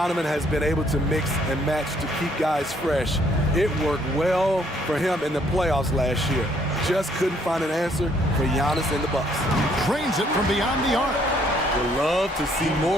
has been able to mix and match to keep guys fresh. It worked well for him in the playoffs last year. Just couldn't find an answer for Giannis and the Bucks. Trains it from beyond the arc. Would love to see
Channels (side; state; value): both; normal; correlation 0.66